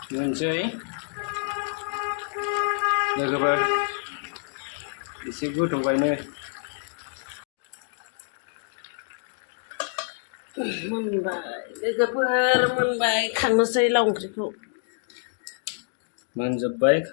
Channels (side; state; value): right; silent; digital silence